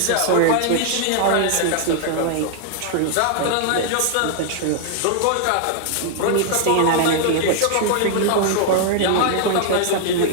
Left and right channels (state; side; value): different; both; correlation 0.00